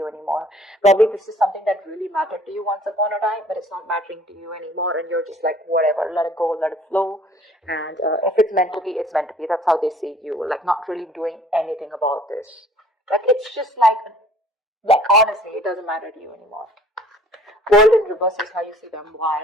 anymore. Probably this is something that really mattered to you once upon a time, but it's not mattering to you anymore, and you're just like, whatever, let it go, let it flow. And if it's meant to be, it's meant to be. That's how they see you. Like, not really doing anything about this. Like, it's just like honestly, it doesn't matter to you anymore. World in reverse is how you see them.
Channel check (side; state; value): both; normal; correlation 0.54